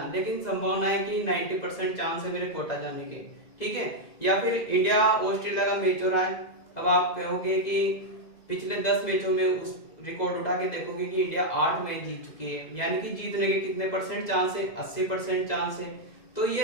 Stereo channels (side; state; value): right; late; 2.0 ms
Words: लेकिन संभावना है कि 90% चांस है मेरे कोटा जाने के, ठीक है। या फिर इंडिया ऑस्ट्रेलिया का मैच हो रहा है, अब आप कहोगे कि पिछले 10 मैचों में उस रिकॉर्ड उठा के देखोगे कि इंडिया 8 मैच जीत चुकी है, यानी कि जीतने के कितने परसेंट चांस है? 80% चांस है। तो